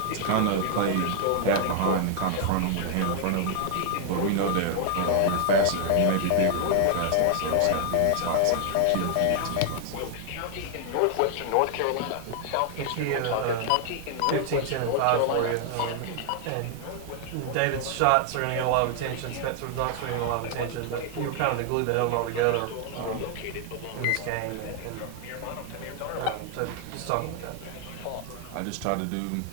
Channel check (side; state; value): both; different; correlation 0.00